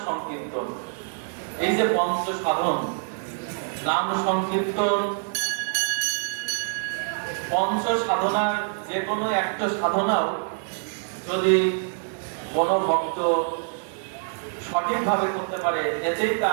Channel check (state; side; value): silent; left; 61 dB below the other